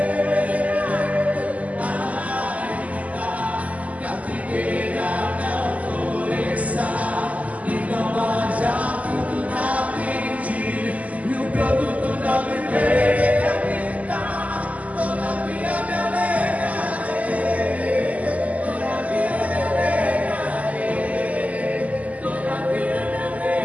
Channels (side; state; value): left; late; 0.073 ms